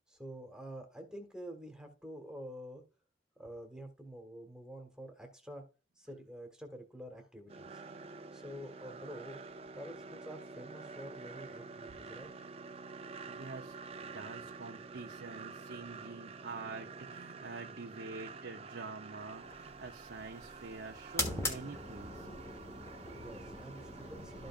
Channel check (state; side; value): normal; both; correlation 0.26